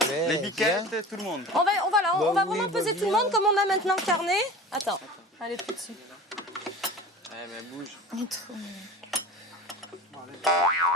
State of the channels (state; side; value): normal; both; correlation 0.37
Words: Les biquettes, tout le monde. On va vraiment peser tout le monde comme on a maintenant le carnet. Attends. Allez, plus dessus. Ouais, mais bouge. Il est trop mignon.